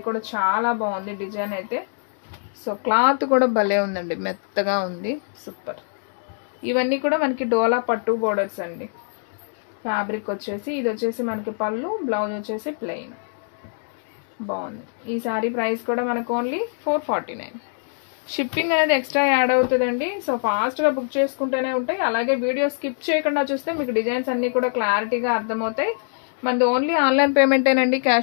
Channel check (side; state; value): right; silent; digital silence